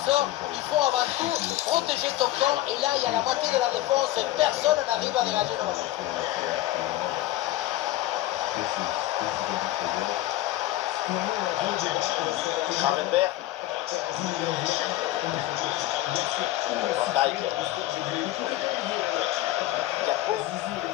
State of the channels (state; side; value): quieter; right; 15.5 dB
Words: il faut avant tout protéger ton camp. Et là, il y a la moitié de la défense et personne n'arrive à dégager le ballon. Gravenberch. Van Dijk. Gakpo.